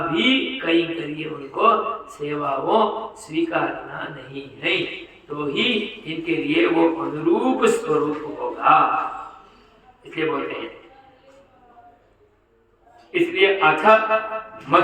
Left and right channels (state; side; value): identical; both; correlation 1.00